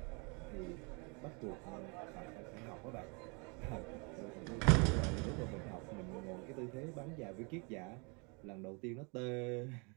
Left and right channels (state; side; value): quieter; left; 32.4 dB